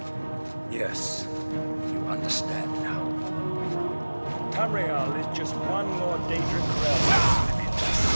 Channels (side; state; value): both; inverted; correlation -1.00